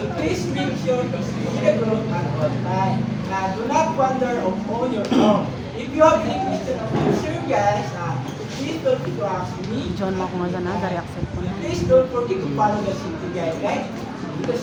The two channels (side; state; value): both; identical; correlation 1.00